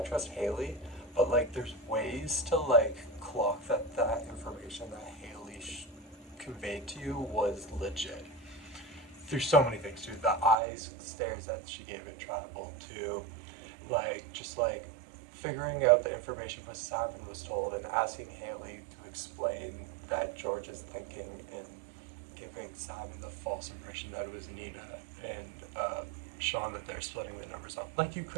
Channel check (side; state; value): left; drops out; at 10.6 s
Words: trust Haley, but like there's ways to like clock that information that Haley conveyed to you was legit. There's so many things too. The eyes stares that she gave it tribal to, like just like figuring out the information what Simon was told and asking Haley to explain that George is thinking and giving Simon the false impression that it was Nina and Sean that they're splitting the numbers up. Like you